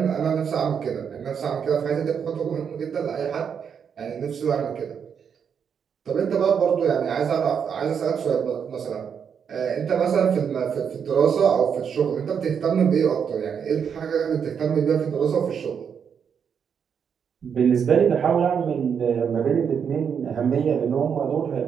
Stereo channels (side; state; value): left; quieter; 7.2 dB